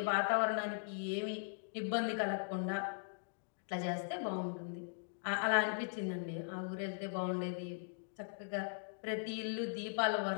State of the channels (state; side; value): silent; right; digital silence